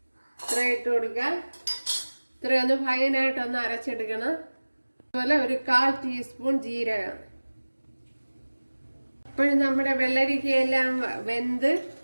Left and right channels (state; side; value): inverted; both; correlation -1.00